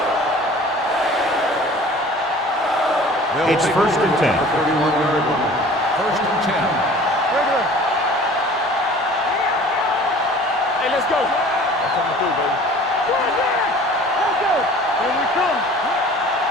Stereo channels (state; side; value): normal; both; correlation 0.46